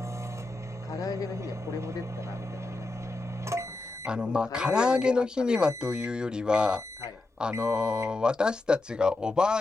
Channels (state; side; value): quieter; right; 3.1 dB